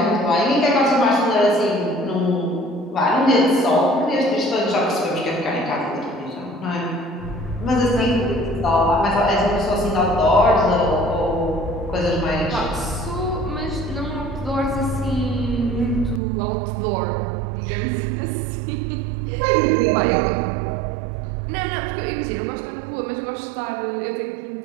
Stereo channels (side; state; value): left; drops out; at 16.2 s